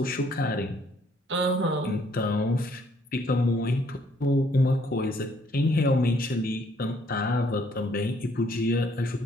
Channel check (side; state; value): both; normal; correlation 0.65